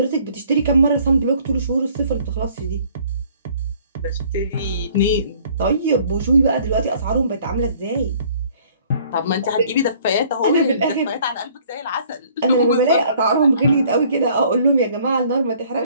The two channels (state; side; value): inverted; both; correlation -0.58